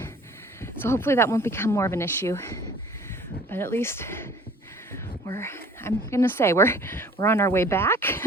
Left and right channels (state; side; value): normal; both; correlation 0.51